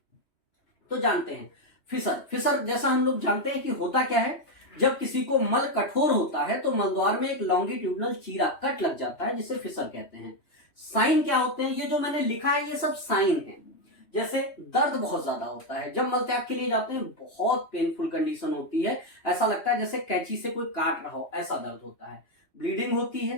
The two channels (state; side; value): late; right; 3.1 ms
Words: तो जानते हैं फिशर। फिशर जैसा हम लोग जानते हैं कि होता क्या है, जब किसी को मल कठोर होता है तो मलद्वार में एक लॉन्गिट्यूडनल चीरा कट लग जाता है, जिसे फिशर कहते हैं। साइन क्या होते हैं? ये जो मैंने लिखा है ये सब साइन है। जैसे दर्द बहुत ज्यादा होता है, जब मल त्याग के लिए जाते हैं बहुत पेनफुल कंडीशन होती है, ऐसा लगता है जैसे कैंची से कोई काट रहा हो, ऐसा दर्द होता है। ब्लीडिंग होती